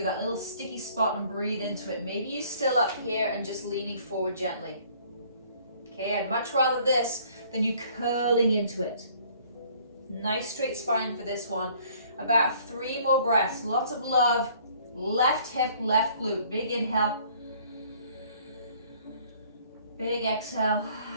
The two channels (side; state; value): both; inverted; correlation -0.58